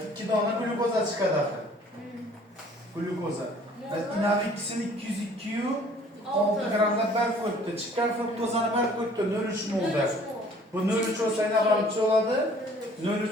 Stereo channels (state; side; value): normal; both; correlation 0.54